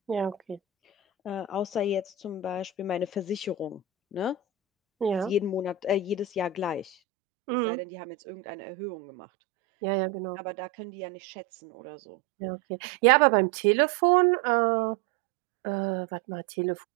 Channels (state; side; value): drops out; left; at 7.0 s